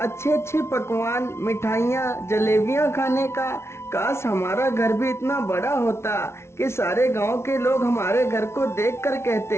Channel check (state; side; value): late; right; 0.13 ms